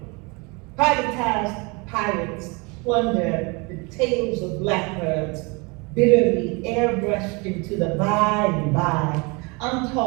Privatized pirates plunder the tails of blackbirds, bitterly airbrushed into the by and by.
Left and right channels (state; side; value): quieter; left; 28.6 dB